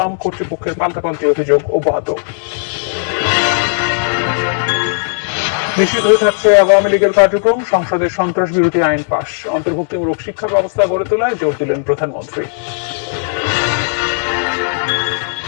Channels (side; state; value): right; silent; 70 dB below the other